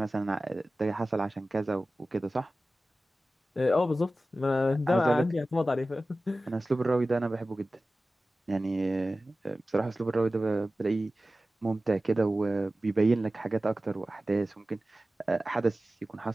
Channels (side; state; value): both; normal; correlation 0.95